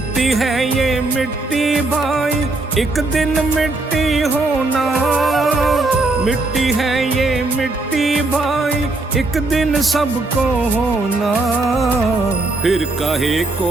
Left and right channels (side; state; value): left; quieter; 3.0 dB